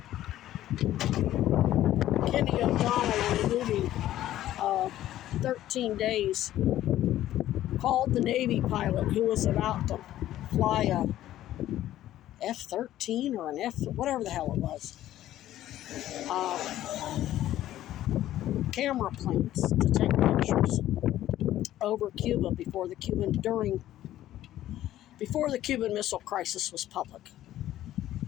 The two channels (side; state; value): right; quieter; 13.4 dB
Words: Kenny O'Donnell in the movie 13 Days called the Navy pilot who was about to fly a F-13 or an F, whatever the hell it was, camera planes to take pictures over Cuba before the Cuban Missile Crisis was public.